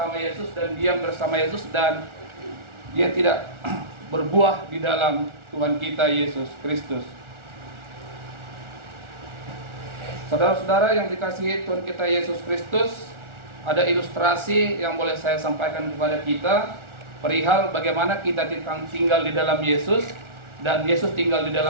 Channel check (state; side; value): late; left; 1.4 ms